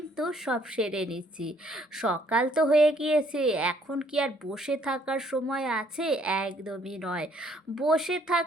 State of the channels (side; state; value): both; normal; correlation 0.65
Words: সব সেরে নিচ্ছি। সকাল তো হয়ে গিয়েছে, এখন কি আর বসে থাকার সময় আছে? একদমই নয়। বসে